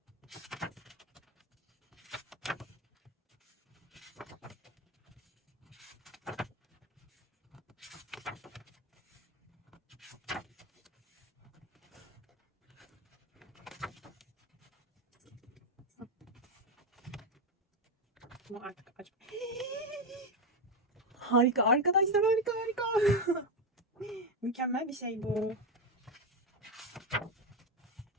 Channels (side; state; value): both; normal; correlation 0.10